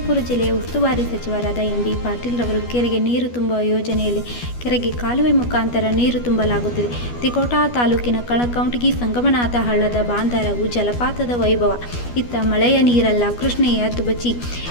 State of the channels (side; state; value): right; late; 12 ms